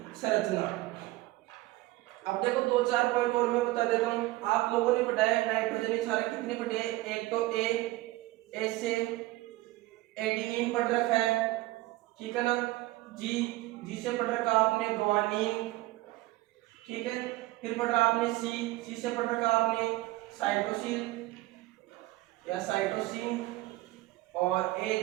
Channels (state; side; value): quieter; left; 18.7 dB